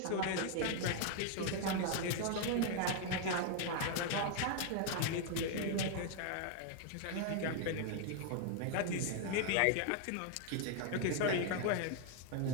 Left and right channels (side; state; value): both; different; correlation 0.00